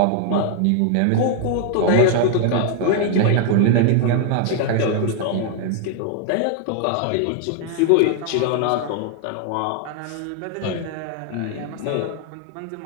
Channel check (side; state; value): both; different; correlation 0.00